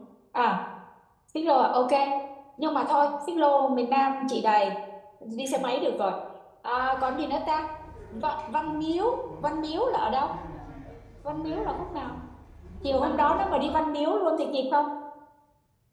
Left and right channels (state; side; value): identical; both; correlation 1.00